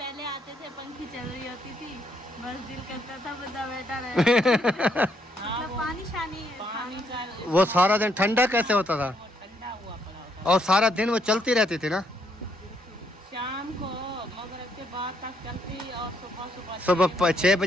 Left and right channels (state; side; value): normal; both; correlation 0.73